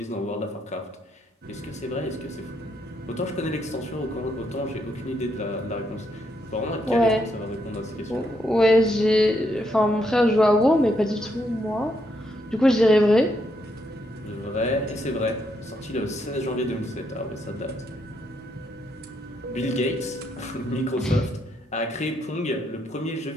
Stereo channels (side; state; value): both; normal; correlation 0.77